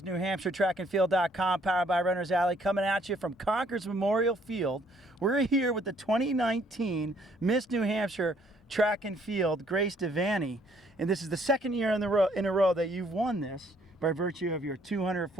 NewHampshireTrackandField.com, powered by Runner's Alley, coming at you from Concord's Memorial Field. We're here with the 2019 Miss New Hampshire Track and Field, Grace Devanny, and this is the second year in a row that you've won this by virtue of your 200,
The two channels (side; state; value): both; normal; correlation 0.64